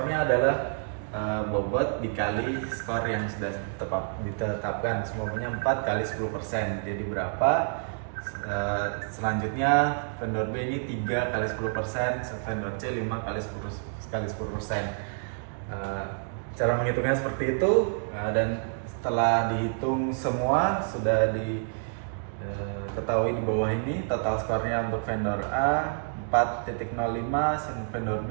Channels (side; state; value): left; silent; digital silence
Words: adalah bobot dikali skor yang sudah ditetapkan, semuanya 4 kali 10%. Jadi berapa? Selanjutnya vendor B ini 3 kali 10%, vendor C 5 kali 10%. Cara menghitungnya seperti itu, dan setelah dihitung semua sudah diketahui di bawah ini total skornya untuk vendor A 4.05, vendor